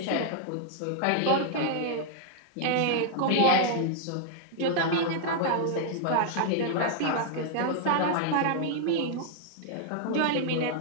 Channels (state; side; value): different; both; correlation -0.01